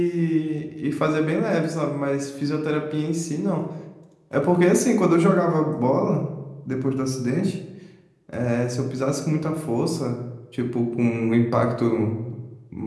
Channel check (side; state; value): both; identical; correlation 1.00